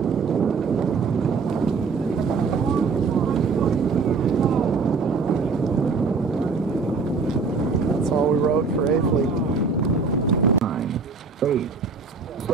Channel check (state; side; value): quieter; left; 4.7 dB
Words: For A fleet. 9, 8,